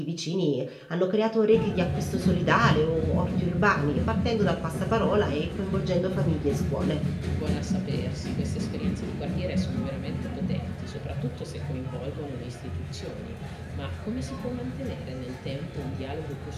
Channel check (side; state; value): both; identical; correlation 1.00